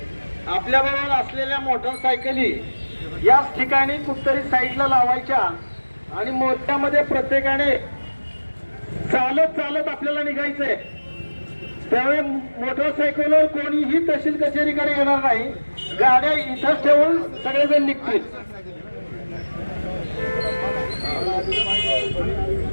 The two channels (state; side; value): inverted; both; correlation -1.00